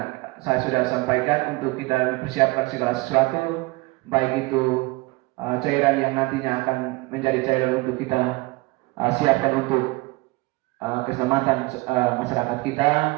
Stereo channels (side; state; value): left; quieter; 22.9 dB